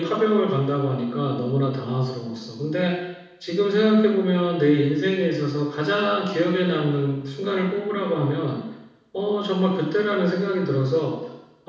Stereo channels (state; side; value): identical; both; correlation 1.00